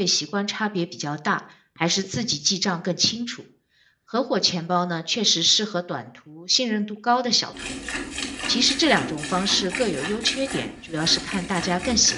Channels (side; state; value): both; identical; correlation 1.00